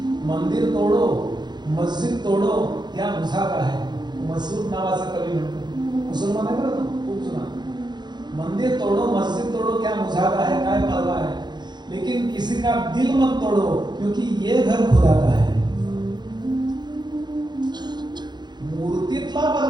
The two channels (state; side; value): late; left; 0.21 ms